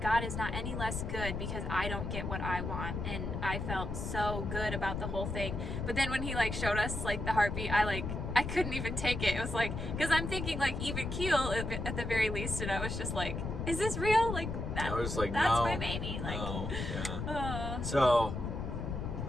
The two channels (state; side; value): noise; left; rumble, 4 dB below the sound